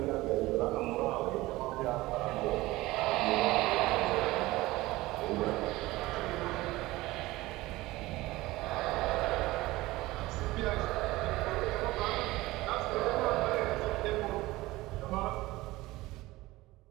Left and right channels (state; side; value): quieter; left; 19.1 dB